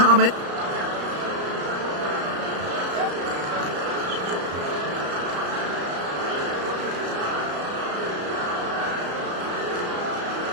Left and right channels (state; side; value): late; left; 34 ms